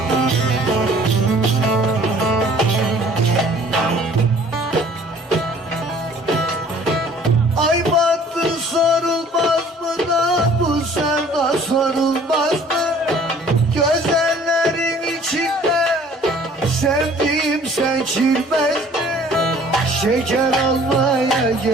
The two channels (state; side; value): normal; both; correlation 0.53